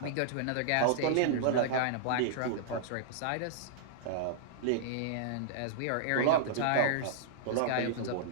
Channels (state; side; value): different; both; correlation -0.02